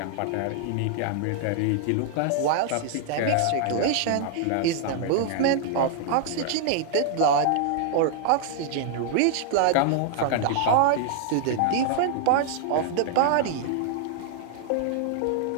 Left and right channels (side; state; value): both; different; correlation 0.00